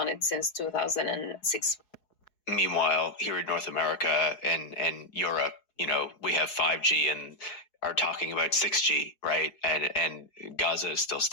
it since 2006. Meanwhile, here in North America and Europe, we have 5G and are talking about 6G, right? And Gaza is still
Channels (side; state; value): right; late; 4.7 ms